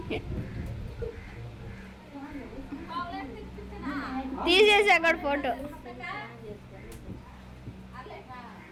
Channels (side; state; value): both; identical; correlation 1.00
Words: తీసేసి అక్కడ ఫోటో.